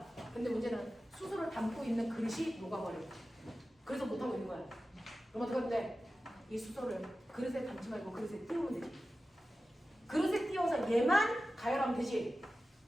근데 문제는 수소를 담고 있는 그릇이 녹아버려. 그래서 못하고 있는 거야. 그럼 어떻게 하면 돼? 이 수소를 그릇에 담지 말고 그릇에 띄우면 되지. 그릇에 띄워서 얘만 가열하면 되지.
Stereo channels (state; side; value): normal; both; correlation 0.94